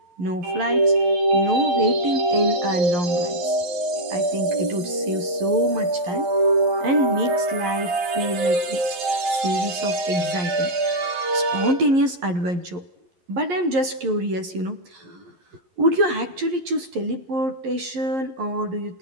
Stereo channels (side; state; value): left; late; 11 ms